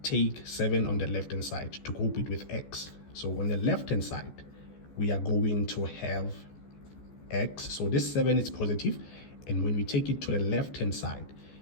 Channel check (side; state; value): right; late; 14 ms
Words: take 7 on the left hand side to group it with x. So on the left hand side, we are going to have x. So this 7 is positive, and when we take it to the left hand side,